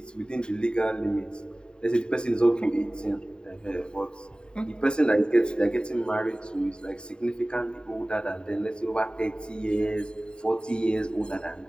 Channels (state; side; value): late; right; 0.049 ms